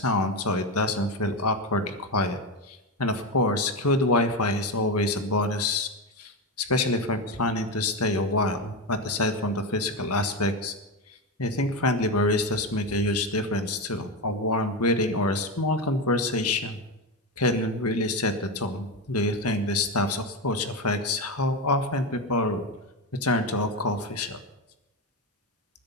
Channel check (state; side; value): normal; both; correlation 0.14